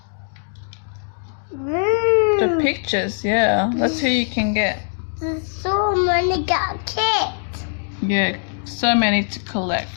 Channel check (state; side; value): silent; right; 65 dB below the other